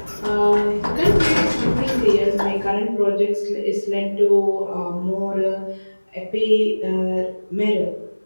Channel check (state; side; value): inverted; both; correlation -1.00